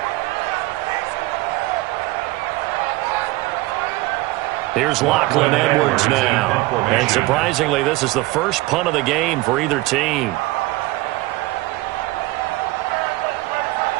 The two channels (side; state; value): left; quieter; 20.0 dB